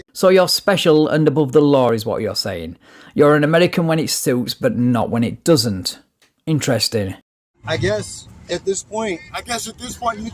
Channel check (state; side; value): identical; both; correlation 1.00